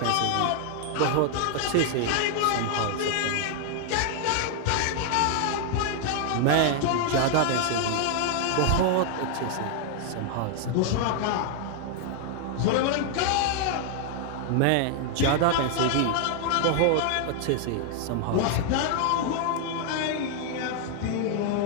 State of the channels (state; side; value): different; both; correlation 0.00